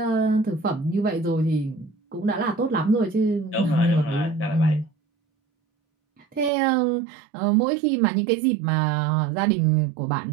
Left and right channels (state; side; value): drops out; left; at 6.5 s